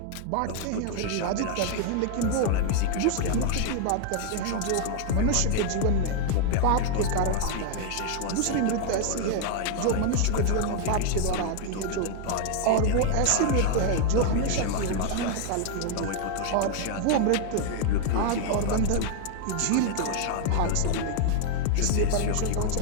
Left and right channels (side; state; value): both; different; correlation 0.00